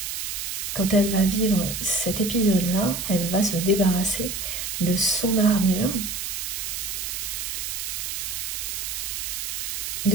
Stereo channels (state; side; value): noise; right; hiss, 4 dB below the sound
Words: Quand elle va vivre cet épisode-là, elle va se débarrasser de son armure,